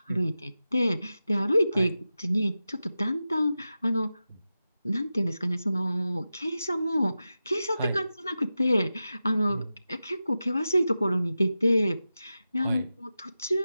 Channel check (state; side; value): inverted; both; correlation -0.93